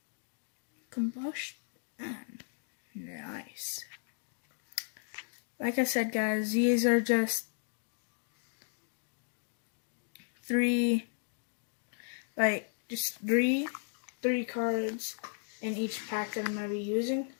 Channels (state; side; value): silent; right; digital silence